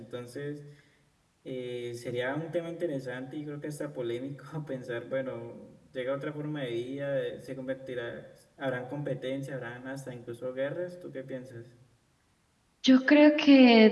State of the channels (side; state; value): both; identical; correlation 1.00